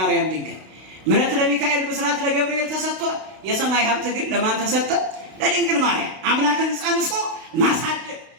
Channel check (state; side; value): late; left; 32 ms